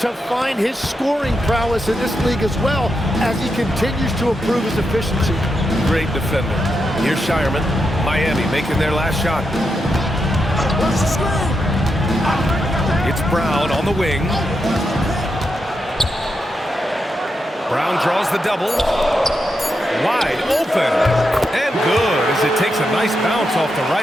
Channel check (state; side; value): normal; both; correlation 0.85